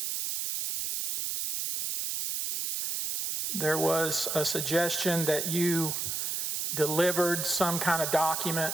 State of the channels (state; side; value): noise; right; hiss, 2 dB below the sound